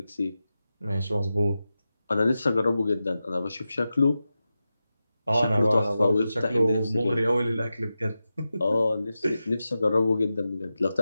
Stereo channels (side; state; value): both; inverted; correlation -0.92